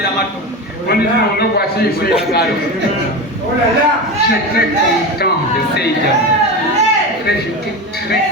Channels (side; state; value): both; normal; correlation 0.23